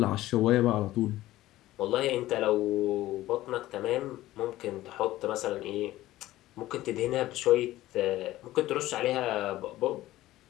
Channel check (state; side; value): quieter; right; 15.8 dB